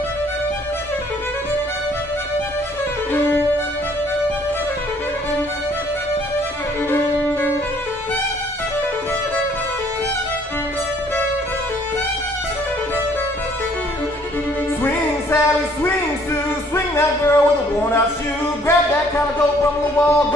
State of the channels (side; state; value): both; normal; correlation 0.61